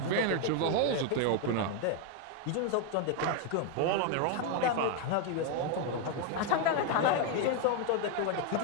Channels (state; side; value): different; both; correlation 0.01